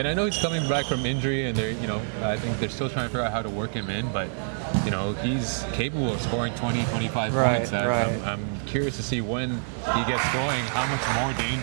I know he's coming back from injury, and they're, I think they're still trying to figure out how to work him in, but he's capable of scoring 20, 25 points. I'm curious to see when he gets going, how much more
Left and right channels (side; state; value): left; silent; digital silence